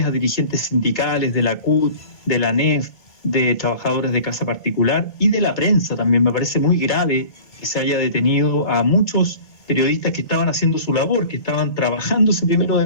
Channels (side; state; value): right; late; 1.8 ms